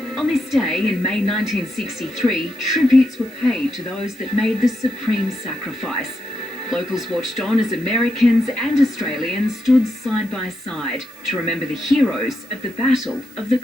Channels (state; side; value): noise; right; hiss, 25 dB below the sound